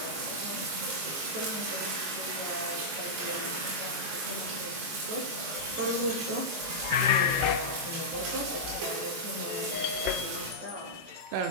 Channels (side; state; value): left; late; 22 ms